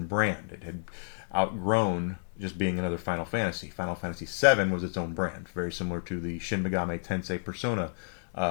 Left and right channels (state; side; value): silent; right; digital silence